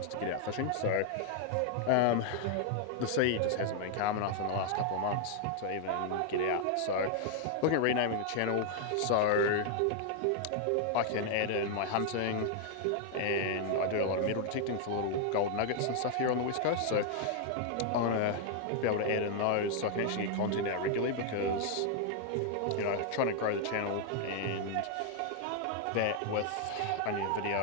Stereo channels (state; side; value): different; both; correlation 0.00